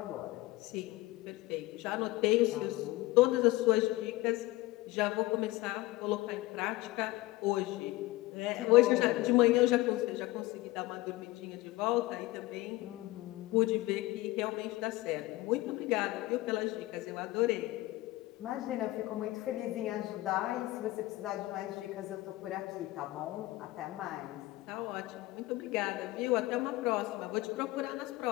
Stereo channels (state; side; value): quieter; right; 18.9 dB